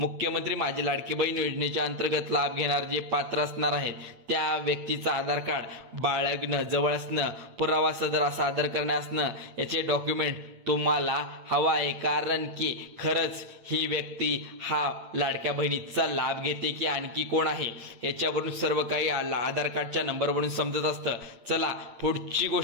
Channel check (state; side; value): late; left; 8.8 ms